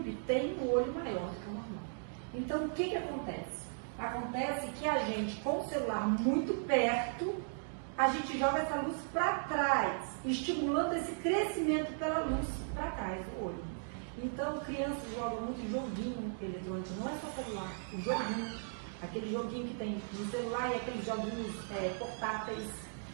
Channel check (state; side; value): silent; left; digital silence